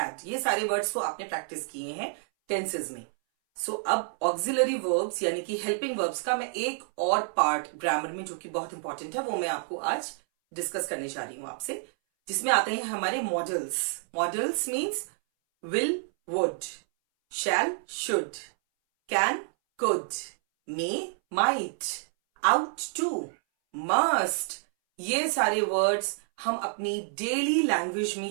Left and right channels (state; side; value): silent; left; 59 dB below the other